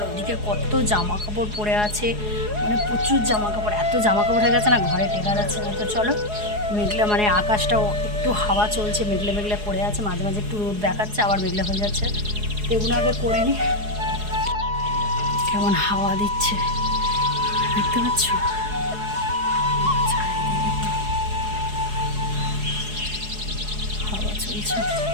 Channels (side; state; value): left; late; 4.8 ms